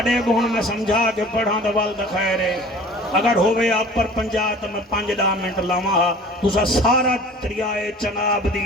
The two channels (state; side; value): normal; both; correlation 0.45